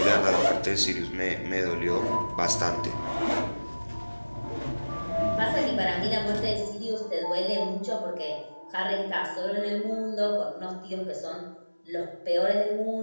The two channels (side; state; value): both; inverted; correlation -1.00